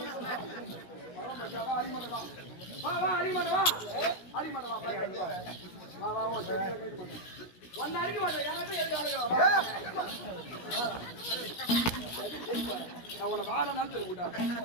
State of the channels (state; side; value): late; right; 16 ms